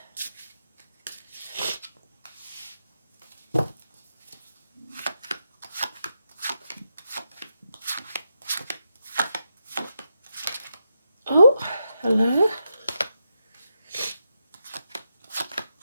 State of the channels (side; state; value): both; inverted; correlation -0.85